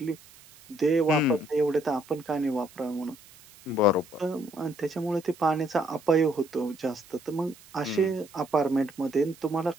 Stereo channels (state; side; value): noise; right; hiss, 23 dB below the sound